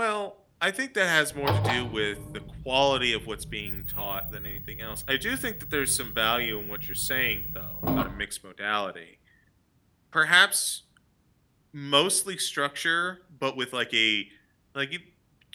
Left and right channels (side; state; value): both; identical; correlation 1.00